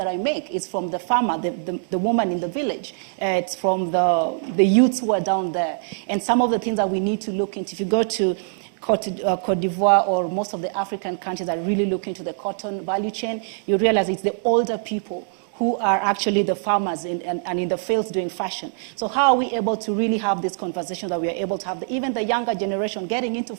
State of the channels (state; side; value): silent; left; digital silence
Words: I make. It's from the farmer, the woman in the village. It's from the youths who are down there. And some of the things that we need to look into, if you go to Cote d'Ivoire or most of the African countries that really look into the cotton value chain, you realize it's the older people who are actually the farmers and in the fields doing fashion. So how are we able to really have this conversation that we are able to have, even the younger generation getting into